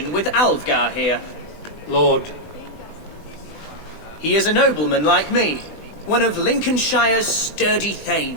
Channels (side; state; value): right; late; 20 ms